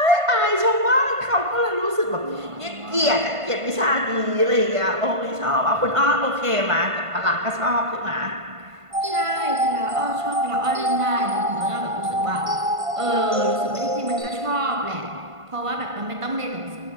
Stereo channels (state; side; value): late; left; 1.5 ms